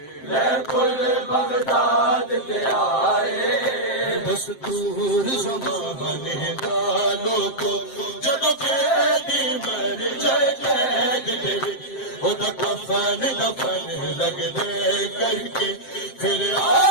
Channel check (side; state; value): right; late; 7.6 ms